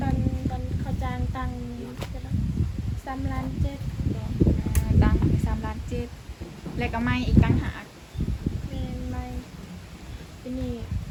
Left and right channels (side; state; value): both; identical; correlation 1.00